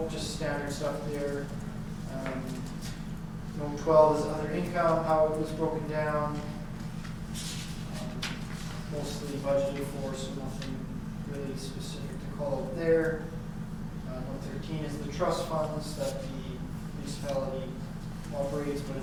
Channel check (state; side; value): identical; both; correlation 1.00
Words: just standard stuff there. Note 12 is other income, how it was broken down. Mostly budgeted for, so nothing really specific to call out there. Note 13 is the trust funds that the municipality operates, but